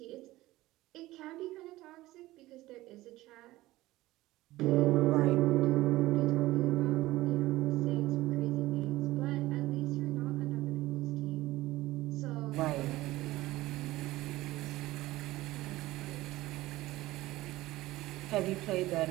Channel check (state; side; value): quieter; left; 17.6 dB